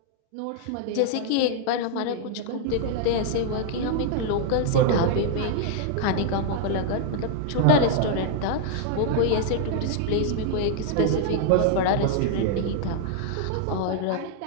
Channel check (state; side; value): different; both; correlation 0.00